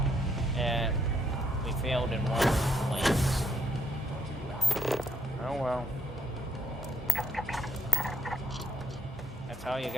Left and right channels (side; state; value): both; normal; correlation 0.73